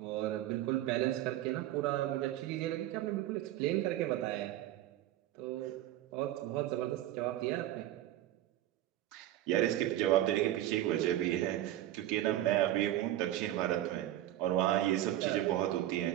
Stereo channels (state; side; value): quieter; left; 13.7 dB